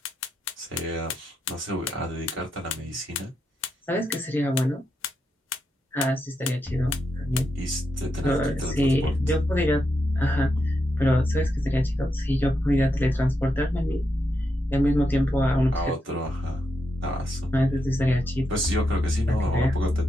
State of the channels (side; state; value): both; normal; correlation 0.84